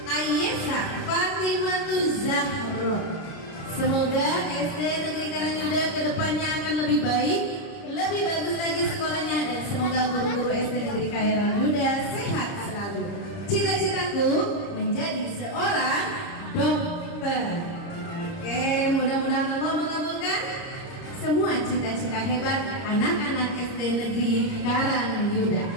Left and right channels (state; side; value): late; right; 30 ms